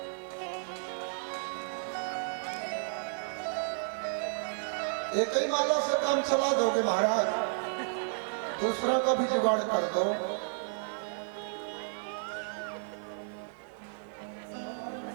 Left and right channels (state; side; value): silent; left; 56 dB below the other